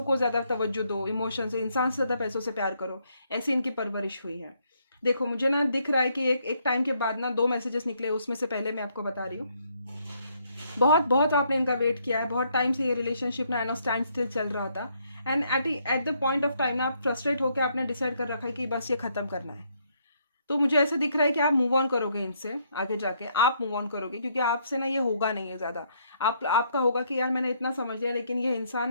को ज़्यादा तवज्जो दो, इमोशन से, इंसान से ज़्यादा पैसों से प्यार करो, ऐसी इनकी परवरिश हुई है। देखो मुझे ना दिख रहा है कि एक टाइम के बाद ना 2 मैसेजेस निकले, उसमें से पहले मैं आपको बता रही हूँ। बहुत बहुत आपने इनका वेट किया है, बहुत टाइम से ये रिलेशनशिप ना स्टैंड स्टिल चल रहा था। And at the point of time ना आप फ्रस्ट्रेट होकर आपने डिसाइड कर रखा है कि बस ये खत्म करना है। तो मुझे ऐसा दिख रहा है कि आप मूव ऑन करोगे इनसे, आगे जाके आप मूव ऑन करोगे, क्योंकि आपसे ना ये होगा नहीं है ज़्यादा। आपका होगा कि यार मैंने इतना समझ लिया, लेकिन ये इंसान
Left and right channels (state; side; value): inverted; both; correlation -0.71